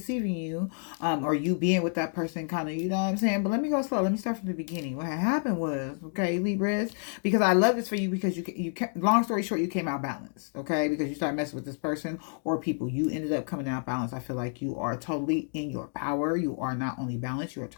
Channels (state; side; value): silent; right; 58 dB below the other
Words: you, or you being with that person kind of, you know what I'm saying? But let me go slow. Let me start from the beginning. What had happened was, okay, Libras, because I love this for you because you long story short, you came out balanced, okay? Because you started messing with this person or people. You ended up coming out balanced. I feel like you are totally in your power. You are not only balanced, you are